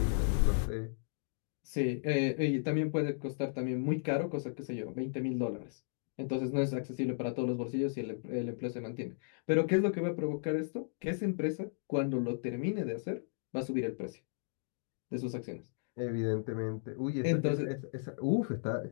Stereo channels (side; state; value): right; silent; digital silence